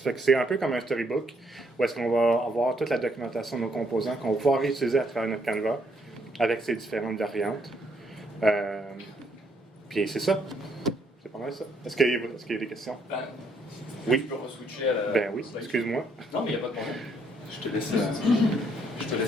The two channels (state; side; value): normal; both; correlation 0.71